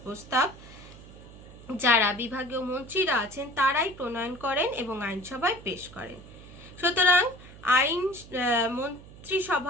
প্রস্তাব যারা বিভাগীয় মন্ত্রীরা আছেন তারাই প্রণয়ন করেন এবং আইনসভায় পেশ করেন। সুতরাং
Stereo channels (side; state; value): right; noise; hum, 18 dB below the sound